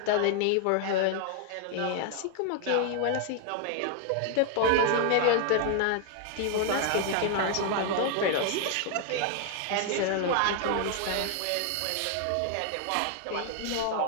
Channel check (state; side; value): different; both; correlation 0.00